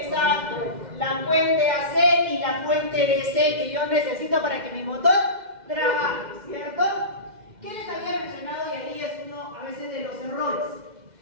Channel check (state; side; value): late; left; 2.1 ms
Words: la fuente AC y la fuente DC que yo necesito para que mi motor trabaje, ¿cierto? ¿Qué les había mencionado? Y ahí es uno a veces de los errores.